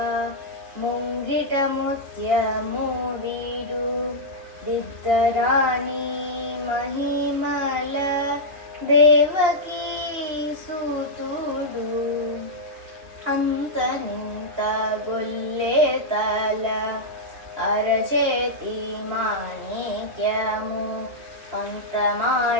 ಮುಂಗಿಟ ಮುತ್ಯ ಮೂವಿಡು ದಿದ್ದರಾಣಿ ಮಹಿಮಲ ದೇವಕೀ ಸುತುಡು ಅಂತ ನಿಂತ ಗೊಲ್ಲೆ ತಲ ಅರಚೇತಿ ಮಾಣಿಕ್ಯಮು ಪಂತ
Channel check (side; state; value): left; late; 2.8 ms